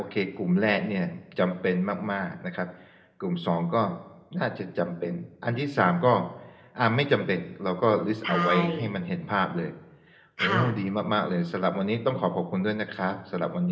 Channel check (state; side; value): identical; both; correlation 1.00